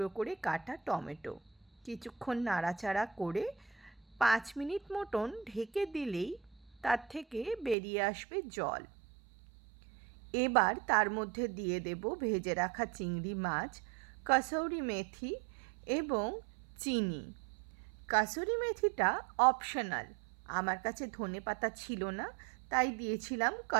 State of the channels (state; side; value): drops out; left; at 7.8 s